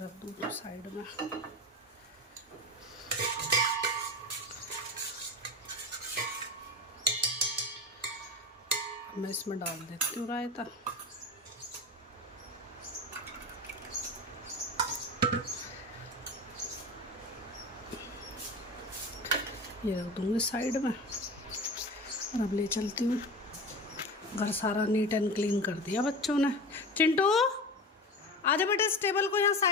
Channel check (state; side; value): normal; both; correlation 0.29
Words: दूँ साइड में। मैं इसमें डाल देती हूँ रायता। ये रख दूँगी साइड में और अब ले चलती हूँ। घर सारा नीट एंड क्लीन कर दिया बच्चों ने। चिंटू आजा बेटा, इस टेबल को यहाँ